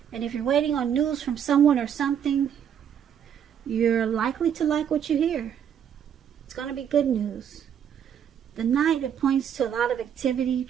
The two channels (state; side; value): quieter; left; 8.7 dB